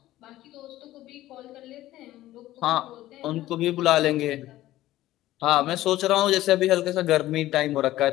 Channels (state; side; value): quieter; right; 15.2 dB